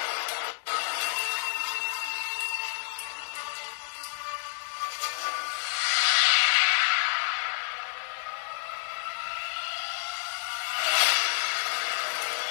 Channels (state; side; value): silent; right; digital silence